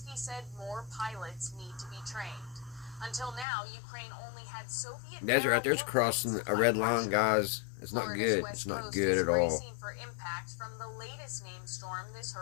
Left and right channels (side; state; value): right; drops out; at 3.5 s